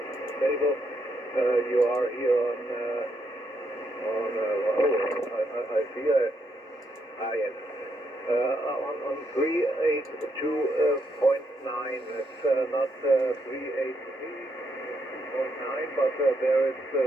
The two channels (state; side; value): normal; both; correlation 0.77